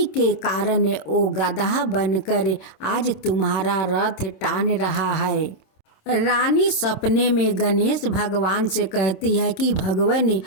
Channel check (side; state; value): right; late; 27 ms